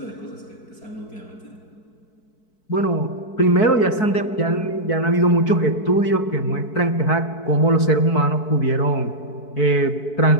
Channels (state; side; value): late; right; 4.6 ms